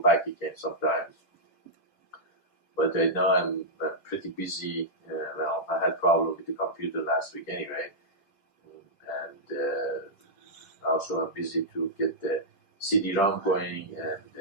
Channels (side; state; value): right; late; 10 ms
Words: again sometimes. But right now I'm pretty busy. Well, I had problem with the computer last week anyway, and also I'm busy to get the CD-ROM going